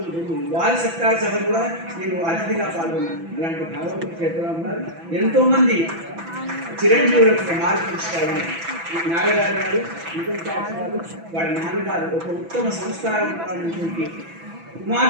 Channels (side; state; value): left; late; 6.0 ms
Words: వారి సత్కార సభ కూడా నేను అతిథిగా పాల్గొన్నాను. అలాంటి భగవంతుడు చెప్పడం ఉన్నారు. ఎంతో మంది చిరంజీవులకు మార్పు ఇచ్చుకోవాలి. నాగరాజు గారు, నిజం గారు, వారి నాన్నగారు ఒక ఉత్తమ సంస్కారమైనటువంటి